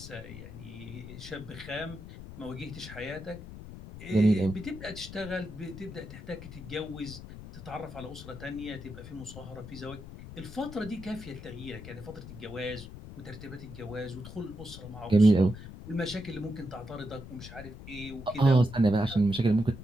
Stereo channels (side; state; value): left; noise; rumble, 13 dB below the sound